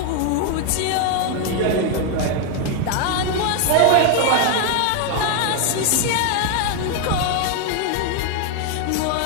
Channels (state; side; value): different; both; correlation 0.01